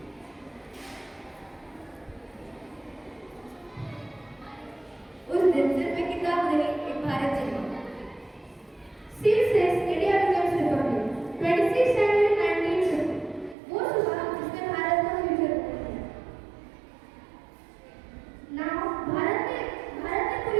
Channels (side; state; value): left; drops out; at 13.6 s